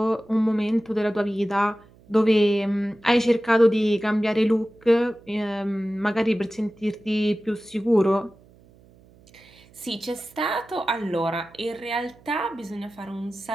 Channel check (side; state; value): right; noise; hum, 27 dB below the sound